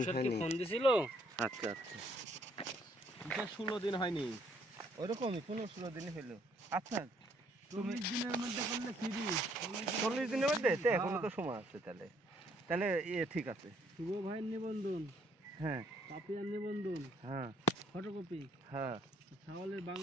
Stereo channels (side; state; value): both; normal; correlation 0.67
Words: তুষার কি হয়নি। ফোন দিছিল? আচ্ছা আচ্ছা। তুষার 16 দিন হয়নি। ওরকমই 15-16 দিন হলো। আচ্ছা 40 দিনের মধ্যে করলে ফ্রি। 40 দিনের মধ্যে তো এখনো তো সময় আছে তাহলে। তাহলে ঠিক আছে। শুভ ভাইয়ের নিবন্ধন, হ্যাঁ পাপিয়ার নিবন্ধন, হ্যাঁ ফটোকপি, হ্যাঁ ছাওয়ালের